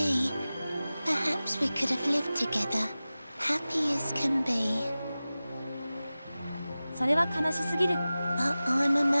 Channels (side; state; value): both; inverted; correlation -0.96